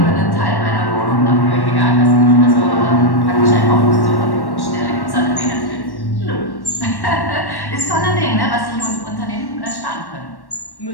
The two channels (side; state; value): right; late; 1.1 ms